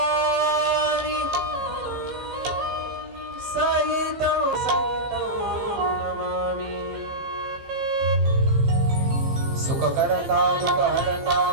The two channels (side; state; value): left; late; 15 ms